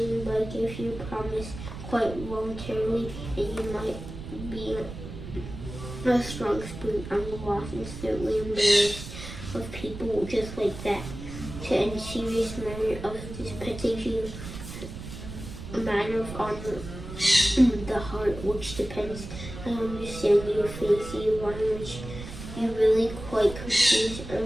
but I gave you a promise quite voluntarily, and you might be a strong spoon on the loss and certainly embarrassed of people just like that. To end serious matter of this petty a matter of honor in the heart, which depends. I understand your Fancy Ivanovich. You really quite confused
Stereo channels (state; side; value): noise; right; rumble, 10 dB below the sound